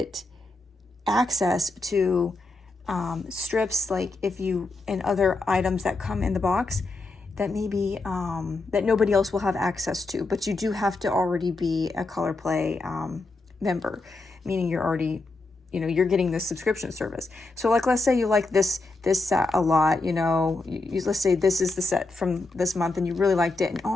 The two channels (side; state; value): right; quieter; 3.3 dB